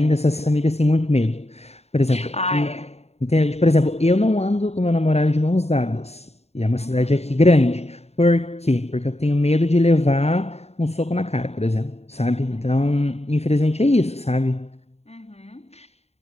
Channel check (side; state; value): right; late; 0.31 ms